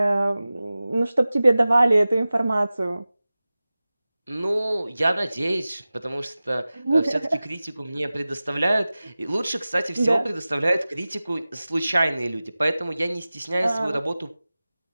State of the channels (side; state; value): both; inverted; correlation -0.97